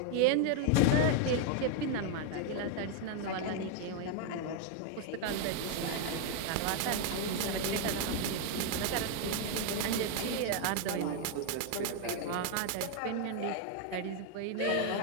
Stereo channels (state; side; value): different; both; correlation 0.01